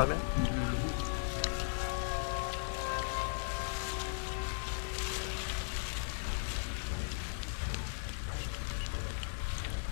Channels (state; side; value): silent; right; digital silence